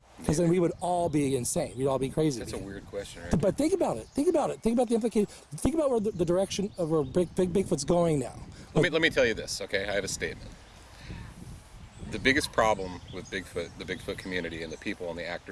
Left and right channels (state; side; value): identical; both; correlation 1.00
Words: Because then we would all be insane. We'd all be crazy. That's a weird question, right? But think about it. Think about the implication. Think about where the direction of where Bigfoot's going now. Let me tell you this, okay? I have a statement. The biggest problem with Bigfoot, the Bigfoot community, and the people and the